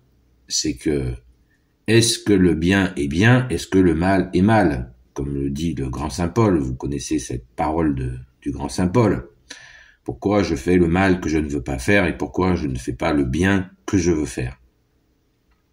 c'est que est-ce que le bien est bien, est-ce que le mal est mal? Comme le dit le grand Saint Paul, vous connaissez cette parole du grand Saint Paul. Pourquoi je fais le mal que je ne veux pas faire et pourquoi je ne fais pas le bien que je veux faire?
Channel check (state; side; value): identical; both; correlation 1.00